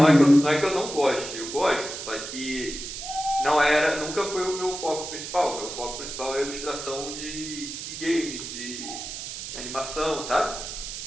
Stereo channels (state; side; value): noise; right; hiss, 8 dB below the sound